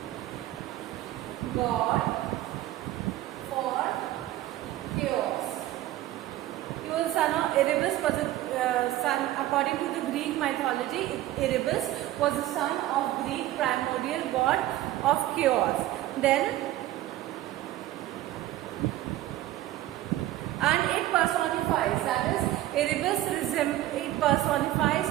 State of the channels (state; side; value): quieter; left; 14.9 dB